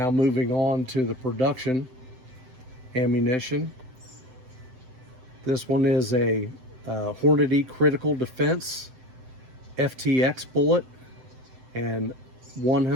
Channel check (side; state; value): left; late; 7.8 ms